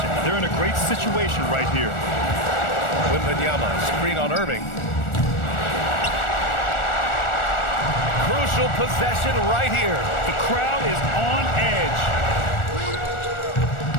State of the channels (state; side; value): late; right; 1.4 ms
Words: They're in a great situation right here. Wembanyama, screen on Irving. Crucial possession right here. The crowd is on edge.